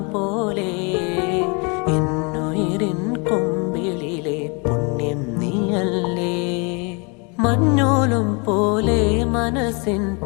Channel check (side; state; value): right; quieter; 32.5 dB